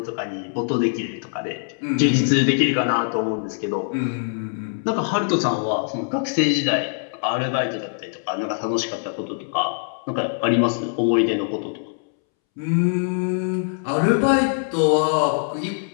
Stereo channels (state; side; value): silent; right; 64 dB below the other